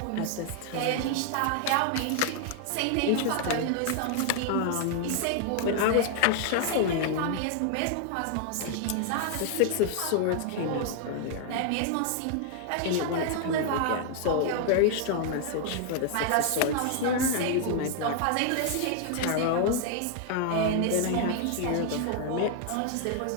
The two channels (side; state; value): both; different; correlation 0.00